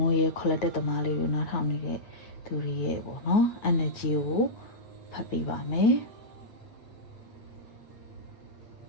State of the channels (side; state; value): right; late; 9.2 ms